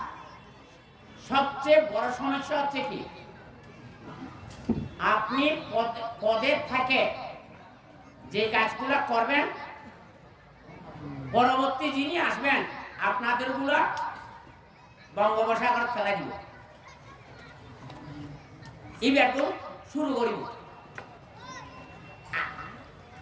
সবচেয়ে বড় সমস্যা হচ্ছে কি, আপনি পদে থাকে যে কাজগুলো করবেন, পরবর্তী যিনি আসবেন আপনাদের গুলা বঙ্গোপসাগর ফেলা দিব, এবার তো শুরু করিব।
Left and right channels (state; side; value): identical; both; correlation 1.00